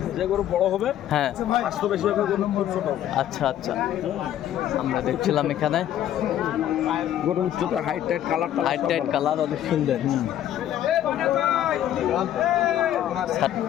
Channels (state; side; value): quieter; right; 11.5 dB